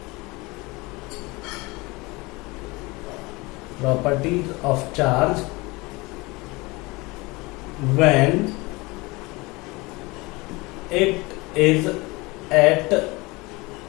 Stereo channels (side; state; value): right; quieter; 24.0 dB